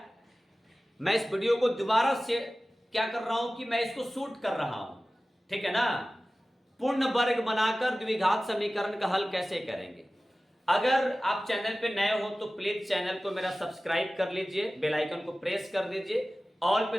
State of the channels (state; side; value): normal; both; correlation 0.96